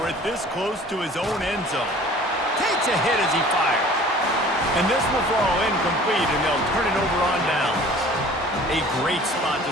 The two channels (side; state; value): both; normal; correlation 0.47